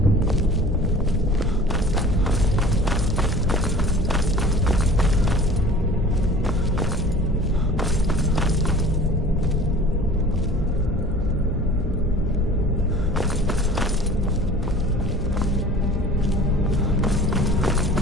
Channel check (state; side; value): normal; both; correlation 0.44